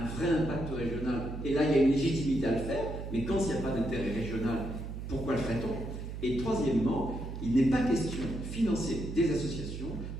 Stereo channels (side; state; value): right; noise; hum, 7 dB below the sound